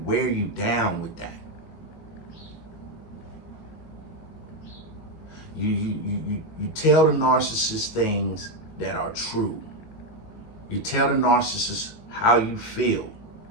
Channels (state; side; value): late; right; 19 ms